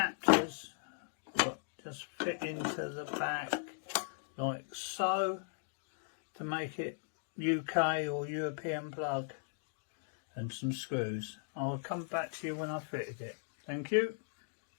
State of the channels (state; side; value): silent; right; digital silence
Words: what just fit into the back like so to make it UK or European plug, and some screws. I'll come back to you when I've fitted it. Thank you.